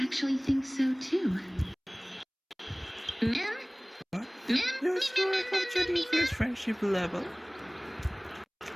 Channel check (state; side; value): identical; both; correlation 1.00